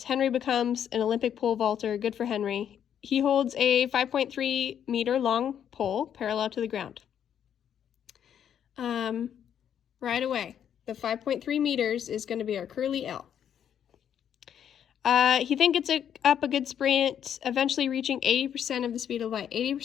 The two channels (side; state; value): right; quieter; 9.1 dB